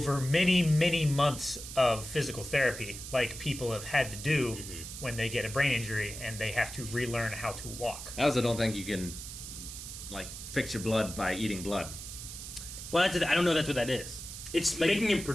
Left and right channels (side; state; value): right; noise; hiss, 10 dB below the sound